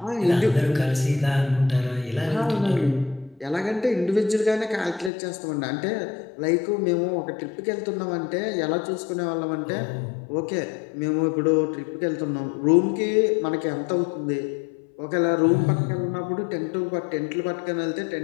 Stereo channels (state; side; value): drops out; right; at 5.1 s